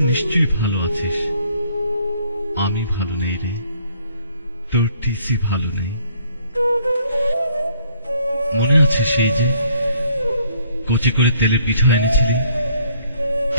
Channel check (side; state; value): both; inverted; correlation -0.63